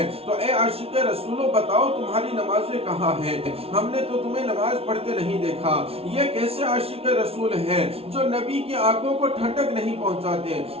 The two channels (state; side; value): late; left; 0.29 ms